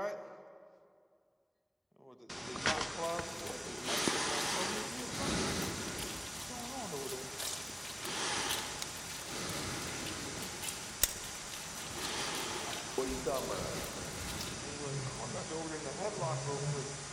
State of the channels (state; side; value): identical; both; correlation 1.00